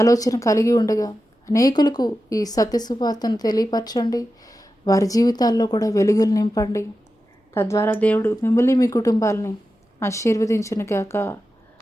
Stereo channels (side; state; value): both; normal; correlation 0.91